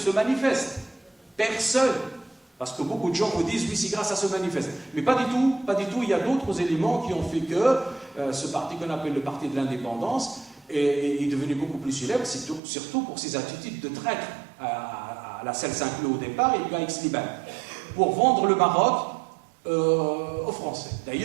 manifeste. Personne. Parce que beaucoup de gens vous disent, oui, c'est grâce à ce manifeste. Mais pas du tout, pas du tout. Il y a d'autres éléments qui ont fait que ce parti qu'on appelle le parti de l'indépendance est devenu beaucoup plus célèbre, surtout pour ses attitudes de traître à la Selle Saint-Cloud au départ et puis à Aix-les-Bains, pour vendre le Maroc aux Français.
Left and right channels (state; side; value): drops out; left; at 12.6 s